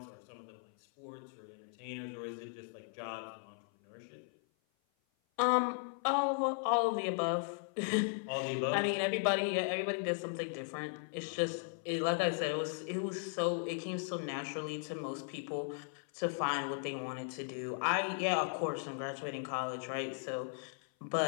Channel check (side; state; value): right; silent; 53 dB below the other